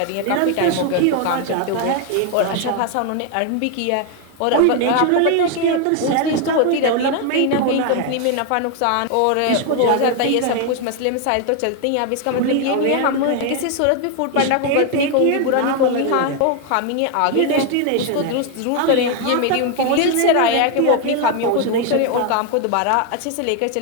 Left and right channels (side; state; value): both; different; correlation 0.01